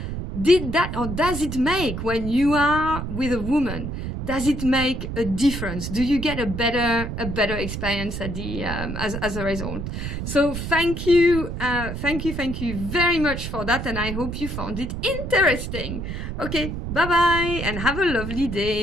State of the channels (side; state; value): right; noise; rumble, 5 dB below the sound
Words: does it make, when you are with a woman, does it make a difference? Do you get a better experience at the as a result? So thank you very much for that, and I hope you found it interesting. Okay, bye bye, and have a lovely